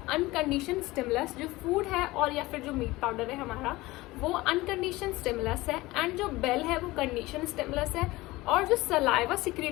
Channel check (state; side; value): quieter; right; 19.9 dB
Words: unconditioned stimulus. जो फूड है और या फिर जो मीट पाउडर है हमारा वो अनकंडीशन स्टिमुलस है एंड जो बेल है वो कंडीशन स्टिमुलस है और जो सलाइवा